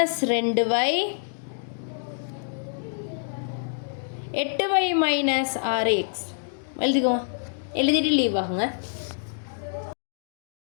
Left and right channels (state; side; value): silent; right; digital silence